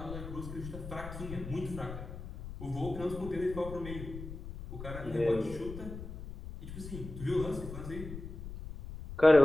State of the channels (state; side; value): noise; left; rumble, 10 dB below the sound